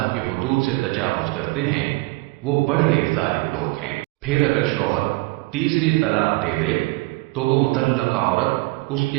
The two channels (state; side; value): quieter; left; 22.3 dB